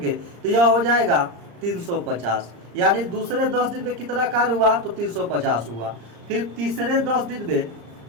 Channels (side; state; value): left; late; 35 ms